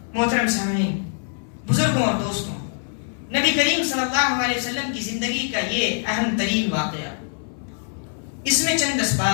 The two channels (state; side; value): silent; right; 63 dB below the other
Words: محترم سامعین، بزرگوں اور دوستوں، نبی کریم صلی اللہ علیہ وسلم کی زندگی کا یہ اہم ترین واقعہ، اس میں چند